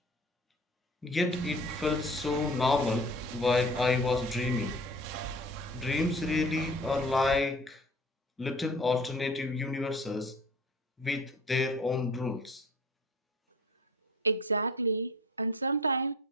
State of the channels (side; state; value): both; normal; correlation 0.44